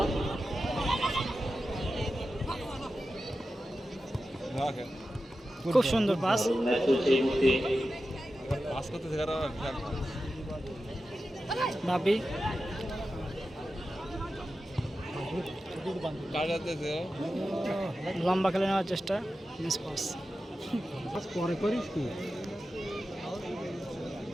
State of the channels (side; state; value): both; normal; correlation 0.92